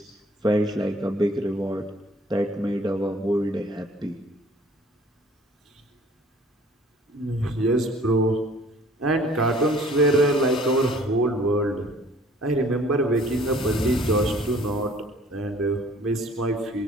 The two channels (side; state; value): both; normal; correlation 0.54